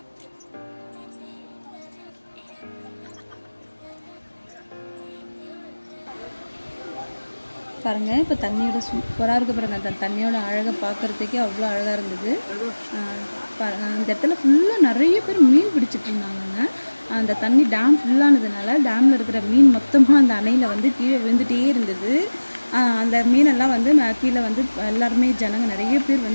பாருங்கள், இப்போ தண்ணியோட சூப்பராக இருக்குது பாருங்கள். அந்த தண்ணியோட அழகை பார்க்குறதுக்கே அவ்வளோ அழகாக இருந்தது. இந்த இடத்துல ஃபுல்லாக நிறைய பேர் மீன் பிடிச்சிட்டு இருந்தாங்கங்க. அந்த தண்ணி டேம் ஃபுல்லானதுனால டேமில் இருக்கிற மீன் மொத்தமாக அந்த அணையில் வந்து கீழே விழுந்துகிட்டே இருந்தது. அந்த மீனெல்லாம் வந்து கீழே வந்து எல்லாருமே ஜனங்க நிறைய பேர்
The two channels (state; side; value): inverted; both; correlation -1.00